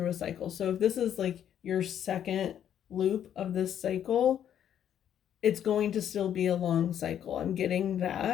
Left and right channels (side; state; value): right; quieter; 9.8 dB